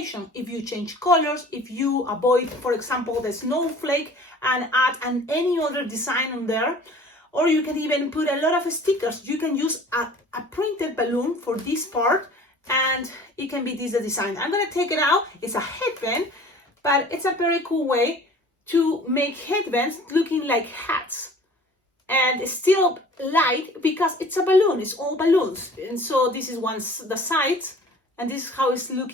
If you change colors, if you avoid, for example, the snowflake and add any other design on there, or you can even put a lot of stickers. You can use a printed balloon for this part, and it can be this design. I'm gonna take it out. It's a headband, but it's a very cool way to make headbands looking like hats, and it's still light because it's a balloon. It's all balloons, and so this is the sides, and this is how it's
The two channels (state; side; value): normal; both; correlation 0.47